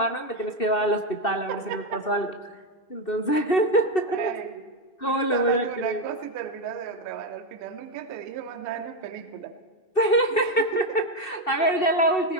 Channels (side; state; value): right; late; 2.7 ms